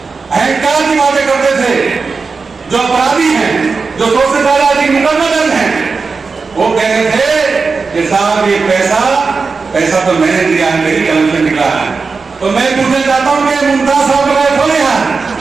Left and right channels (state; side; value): quieter; left; 4.6 dB